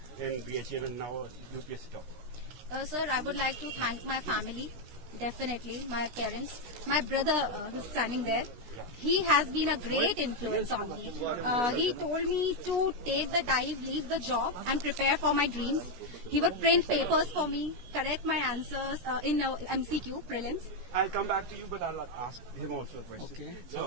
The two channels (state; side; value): late; left; 17 ms